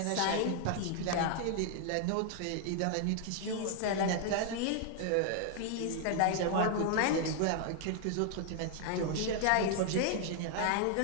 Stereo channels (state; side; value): different; both; correlation 0.00